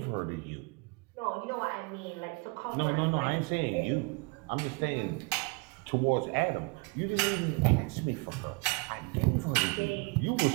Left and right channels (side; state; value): left; quieter; 29.0 dB